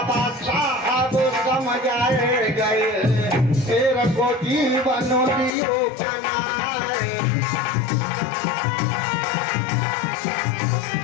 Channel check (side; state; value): right; drops out; at 5.5 s